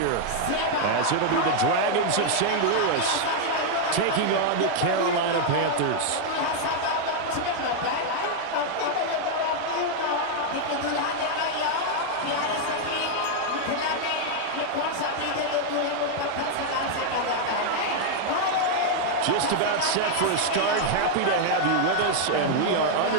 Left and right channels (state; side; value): different; both; correlation 0.00